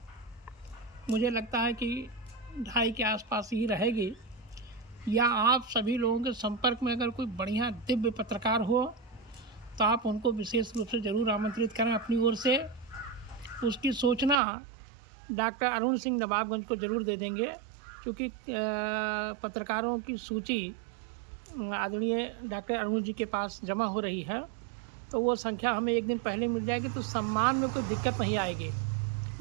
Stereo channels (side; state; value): left; drops out; at 14.4 s